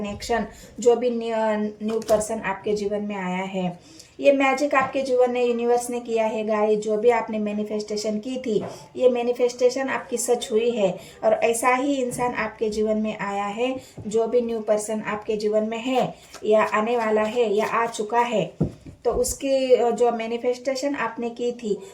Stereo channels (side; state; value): both; identical; correlation 1.00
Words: जो भी न्यू पर्सन आपके जीवन में आया है, ये मैजिक आपके जीवन में यूनिवर्स ने किया है गाइस। जो भी आपने मैनिफेस्टेशन की थी ये मैनिफेस्टेशन आपकी सच हुई है, और ऐसा ही इंसान आपके जीवन में आया है। जो भी न्यू पर्सन आपके जीवन में है या आने वाला है या आ चुका है, तो उसकी जो मैनिफेस्टेशन आपने की थी